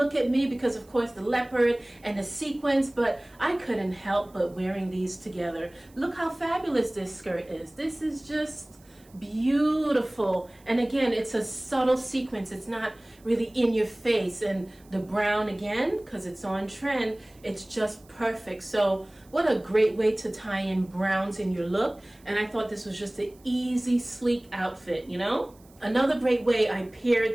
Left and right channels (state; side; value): noise; right; hiss, 29 dB below the sound